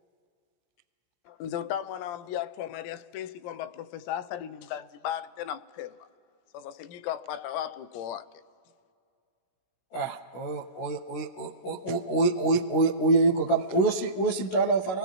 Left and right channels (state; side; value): late; right; 16 ms